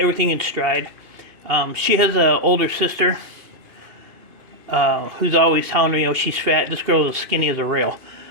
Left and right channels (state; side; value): late; left; 2.5 ms